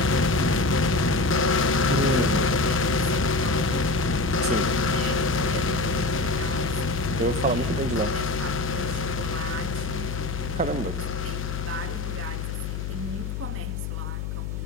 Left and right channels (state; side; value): noise; left; hum, 4 dB below the sound